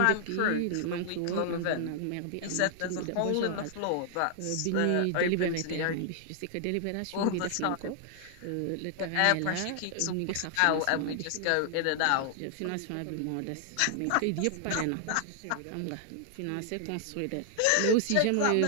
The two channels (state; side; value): different; both; correlation 0.00